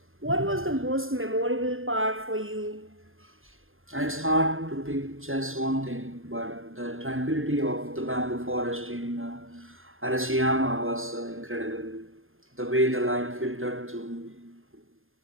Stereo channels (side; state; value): left; late; 0.60 ms